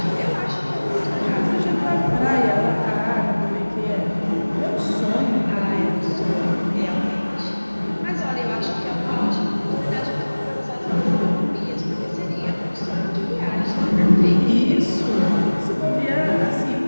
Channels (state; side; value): inverted; both; correlation -1.00